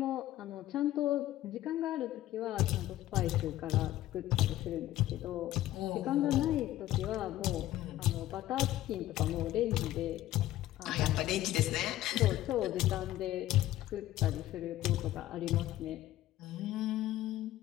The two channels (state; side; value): quieter; right; 14.5 dB